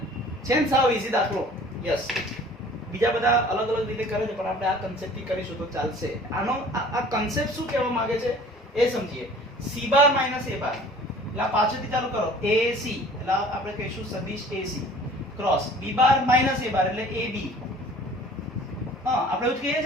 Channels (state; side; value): normal; both; correlation 0.48